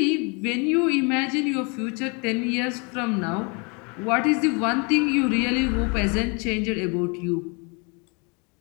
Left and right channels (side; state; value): right; quieter; 32.5 dB